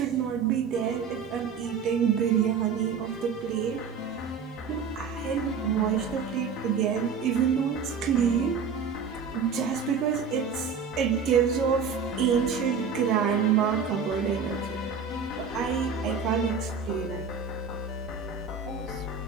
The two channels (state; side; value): quieter; left; 5.9 dB